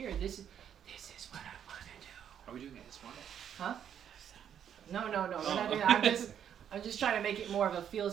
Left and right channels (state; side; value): quieter; left; 9.1 dB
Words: This is what I want to do. Are we doing it this one? Huh? No. We're not doing that. I'm just trying to make it more of a feel